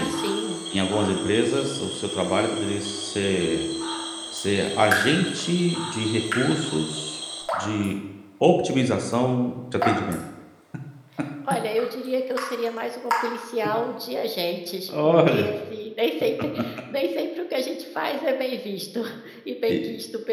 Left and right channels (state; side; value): identical; both; correlation 1.00